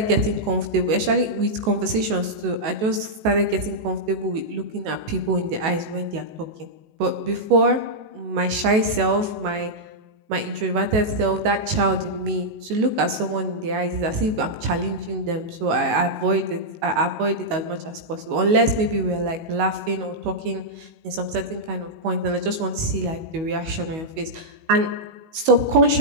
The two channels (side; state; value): left; late; 19 ms